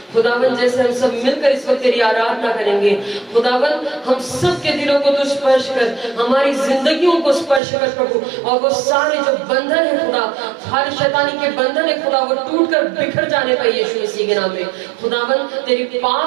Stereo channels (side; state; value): left; drops out; at 7.6 s